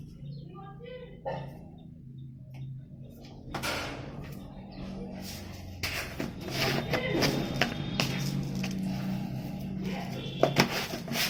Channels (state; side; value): identical; both; correlation 1.00